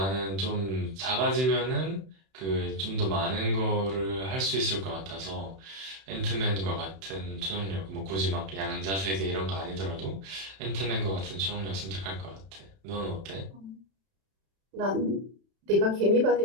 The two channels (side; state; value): left; late; 31 ms